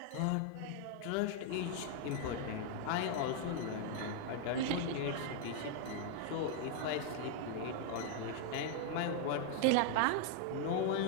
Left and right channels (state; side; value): different; both; correlation 0.00